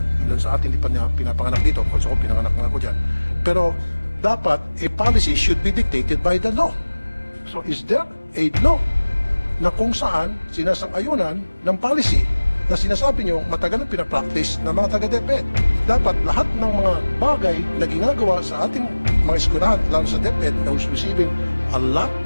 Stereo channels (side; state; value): both; inverted; correlation -1.00